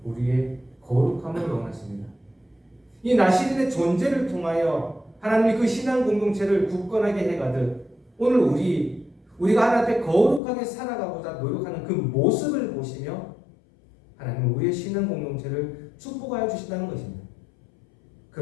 우리의 거룩함을 원하십니다. 이 나실인의 존재를 통하여 하나님이 그 신앙 공동체를 굳건하게 해가듯 오늘 우리가 하나님 앞에 거룩하게 살아가고자 노력하는 그 모습을 보시며 하나님은 우리의 신앙 공동체를 축복하여 주신다는 것입니다.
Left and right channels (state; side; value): drops out; right; at 10.4 s